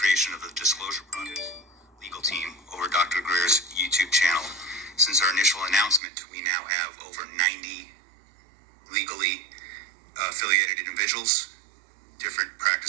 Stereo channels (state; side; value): drops out; left; at 6.0 s